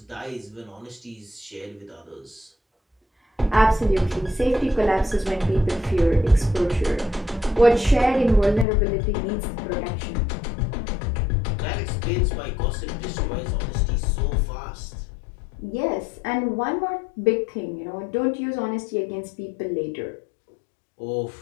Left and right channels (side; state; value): right; drops out; at 8.7 s